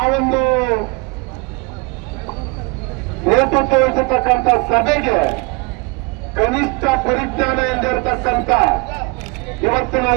ಒಂದು ನೇತೃತ್ವ ವಹಿಸತಕ್ಕಂಥ ಸಭೆಗೆ ಕನಿಷ್ಠ ಪರಿಜ್ಞಾನ ಎಂದಿರತಕ್ಕಂಥ ಇವತ್ತಿನ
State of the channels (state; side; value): quieter; left; 28.1 dB